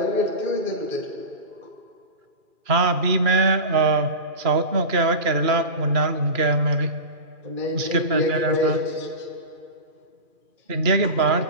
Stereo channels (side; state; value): left; late; 2.4 ms